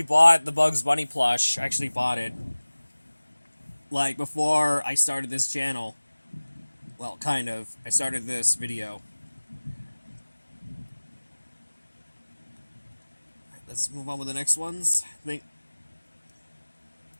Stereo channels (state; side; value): inverted; both; correlation -1.00